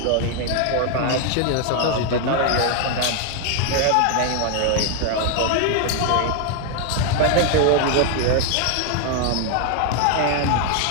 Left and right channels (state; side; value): different; both; correlation 0.00